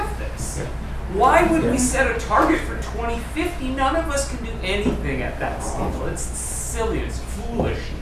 this? Why would we set a target for 2050? None of us can do anything at that scale. It's silly, it's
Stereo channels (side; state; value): both; identical; correlation 1.00